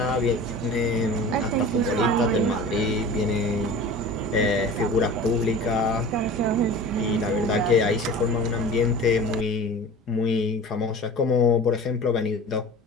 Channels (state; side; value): normal; both; correlation 0.38